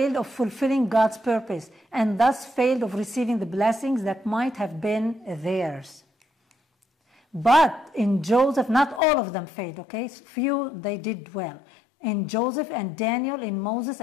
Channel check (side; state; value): right; drops out; at 9.0 s